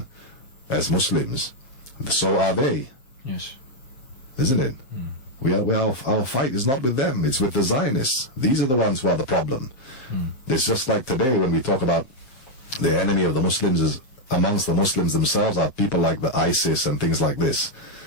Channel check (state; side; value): late; right; 7.6 ms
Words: as Muslims, so are they. Yes. Isn't it? Our fight is not with them, it's with the Zionists. These are the ones who are the problem. It's just like today when we talk about the enemy of the Muslims is amongst the Muslims themselves are people like the ISIS and things like this.